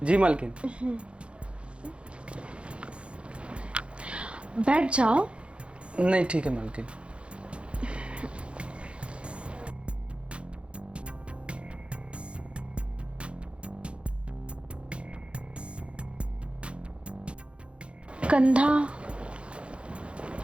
जी मालकिन। बैठ जाओ। नहीं, ठीक है मालकिन। कंधा।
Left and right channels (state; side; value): late; left; 0.059 ms